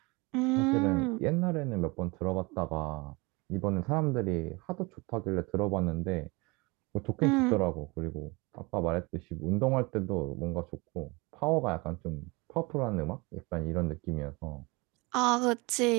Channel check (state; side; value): quieter; left; 26.2 dB